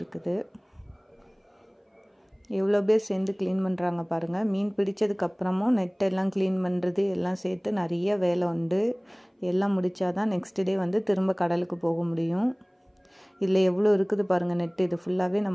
எவ்வளோ பேர் சேர்ந்து க்ளீன் பண்ணுறாங்க பாருங்கள். மீன் பிடிச்சதுக்கப்புறமும் நெட்டெல்லாம் க்ளீன் பண்ணுறது எல்லாம் சேர்த்து நிறைய வேலை உண்டு. எல்லாம் முடித்தாதான் நெக்ஸ்ட் டே வந்து திரும்ப கடலுக்கு போக முடியும். இதில் எவ்வளோ இருக்குது பாருங்கள் நெட்டு. இது ஃபுல்லாகவே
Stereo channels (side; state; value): both; identical; correlation 1.00